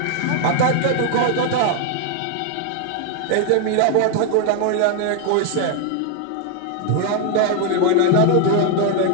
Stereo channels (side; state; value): both; different; correlation 0.00